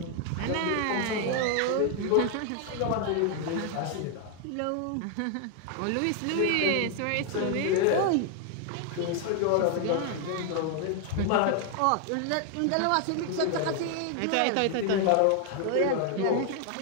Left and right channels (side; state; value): both; different; correlation 0.00